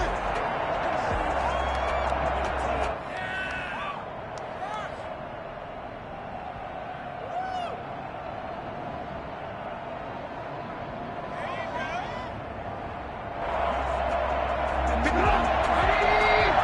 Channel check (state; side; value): identical; both; correlation 1.00